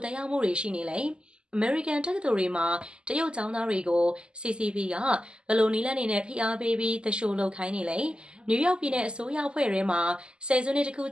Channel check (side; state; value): left; late; 0.050 ms